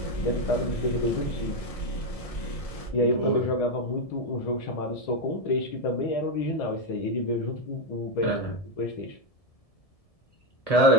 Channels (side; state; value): right; late; 1.7 ms